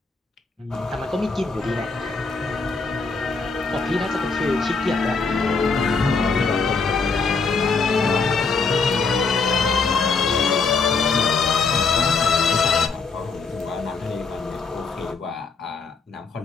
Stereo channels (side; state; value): right; quieter; 4.6 dB